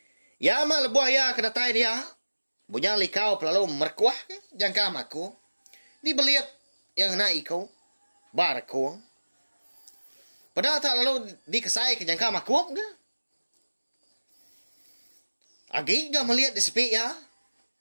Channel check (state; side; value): inverted; both; correlation -1.00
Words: Ya mak lebuah ya kedatai dia. Bujang likau pelalu merkuah ke jangka makub. Dibeliat yang nak ikau. Barku. Padahal tak lalu dikesai ke jangka makub ke. Agi gak melihat di sepi ya.